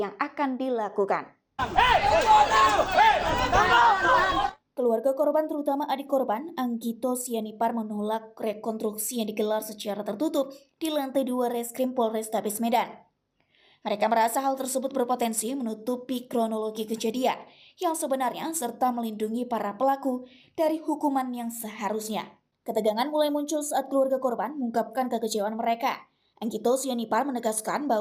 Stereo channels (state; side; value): identical; both; correlation 1.00